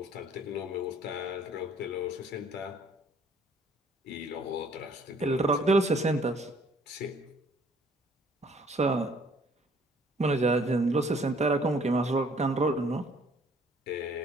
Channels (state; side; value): normal; both; correlation 0.60